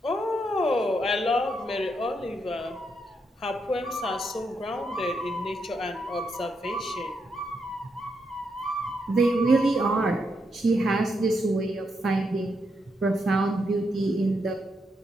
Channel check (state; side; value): normal; both; correlation 0.80